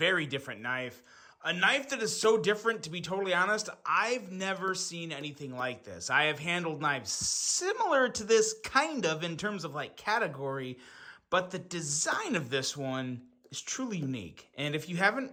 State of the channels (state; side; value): identical; both; correlation 1.00